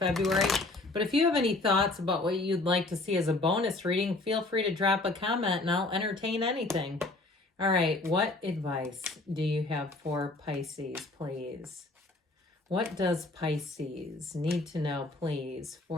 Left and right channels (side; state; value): right; quieter; 3.0 dB